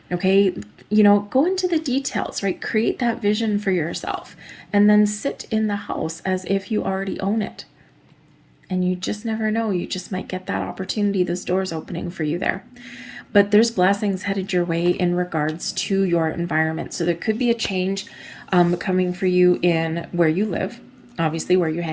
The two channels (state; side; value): identical; both; correlation 1.00